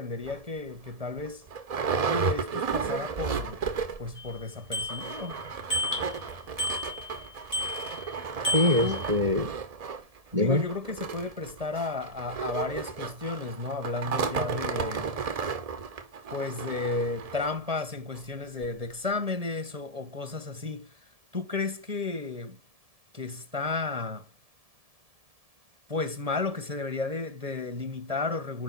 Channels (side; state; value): left; late; 1.7 ms